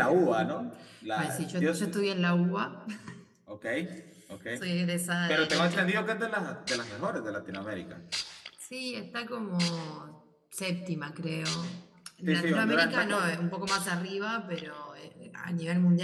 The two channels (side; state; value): both; identical; correlation 1.00